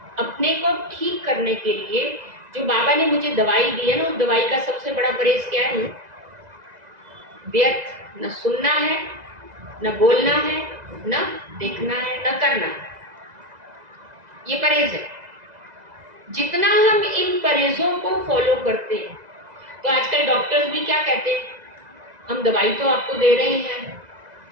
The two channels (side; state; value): left; late; 2.0 ms